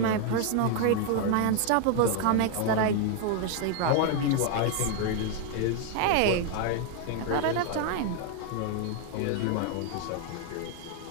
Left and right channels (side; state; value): both; different; correlation 0.01